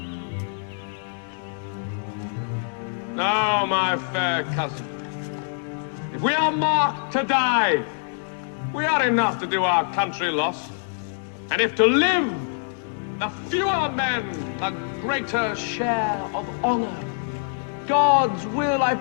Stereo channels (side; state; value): right; silent; digital silence